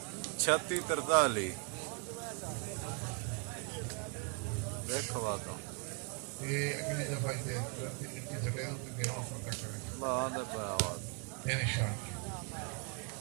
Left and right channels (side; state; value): left; quieter; 37.8 dB